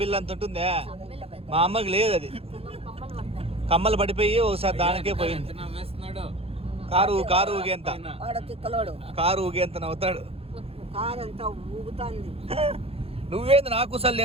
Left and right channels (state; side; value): late; left; 0.28 ms